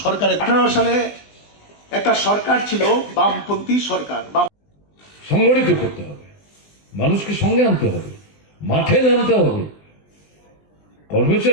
সরকারের 18 সালে একটা সরকার ছিল বামপন্থী সরকার। সংগঠিত করতে হবে, মানুষকে সঙ্গে আনতে হবে, মাঠে নামতে হবে।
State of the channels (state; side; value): late; right; 20 ms